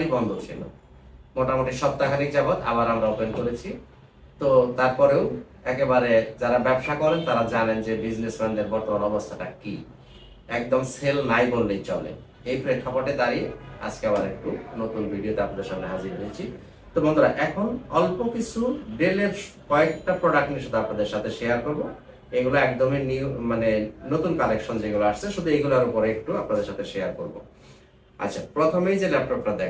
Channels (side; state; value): both; identical; correlation 1.00